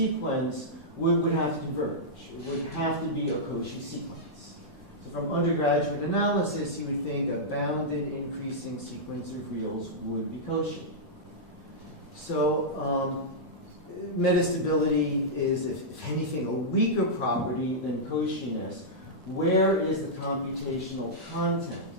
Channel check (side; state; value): both; normal; correlation -0.10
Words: would have to converge. It would have to be a Cauchy sequence. So from undergraduate analysis, you would think a bounded increasing sequence of reals would be Cauchy. So metastability is, if anything, a weaker property than Cauchyness. Where is the computational content?